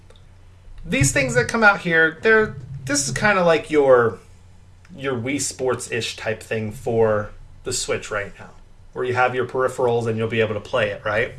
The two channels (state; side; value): identical; both; correlation 1.00